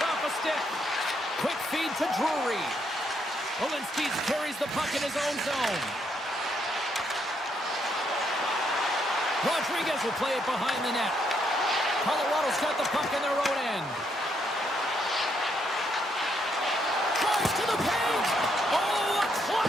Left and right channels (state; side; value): normal; both; correlation 0.75